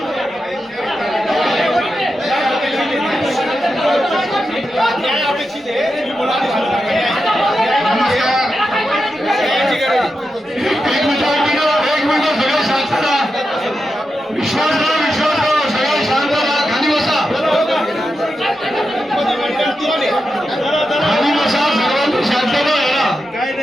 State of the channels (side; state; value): both; normal; correlation 0.88